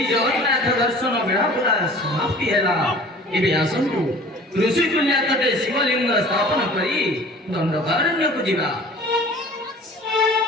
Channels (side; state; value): both; normal; correlation 0.45